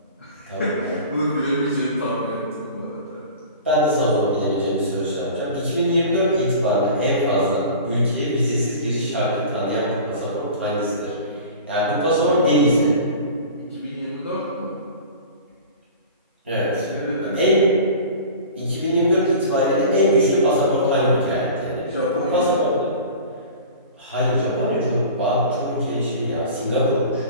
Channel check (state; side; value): inverted; both; correlation -0.38